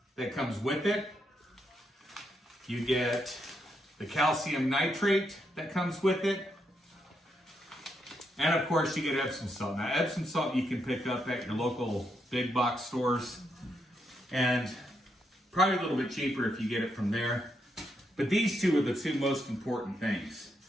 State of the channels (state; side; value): normal; both; correlation 0.80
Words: that comes with it. You get the calcium nitrate that comes with it. And of course you get Epsom salt. Now Epsom salt you can pick up at your local big box stores, and probably a little bit cheaper if you get it from there. But these two are the 2 most important things.